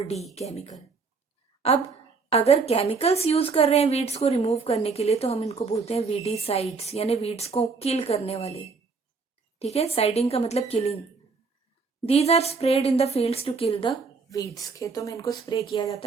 केमिकल। अब अगर केमिकल्स यूज कर रहे हैं वीड्स को रिमूव करने के लिए, तो हम इनको बोलते हैं वीडीसाइड्स, यानी वीड्स को किल करने वाले, ठीक है। साइडिंग का मतलब killing. These are spread in the fields to kill the weeds. खेतों में इनको स्प्रे किया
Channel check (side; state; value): left; quieter; 4.7 dB